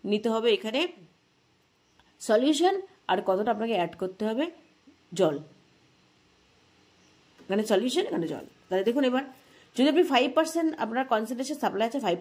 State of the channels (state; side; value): identical; both; correlation 1.00